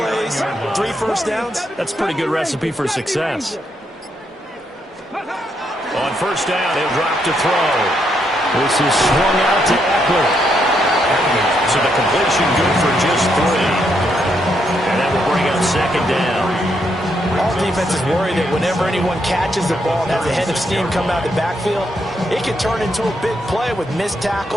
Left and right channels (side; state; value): both; normal; correlation 0.77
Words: 3 first downs. That's a pretty good recipe for success. On first down, he'll drop to throw. This is swung out to Eckler. So the completion good for just 3. And that will bring up second down. All defenses worry that whenever anyone catches the ball and has a head of steam come out of the backfield, it can turn into a big play with missed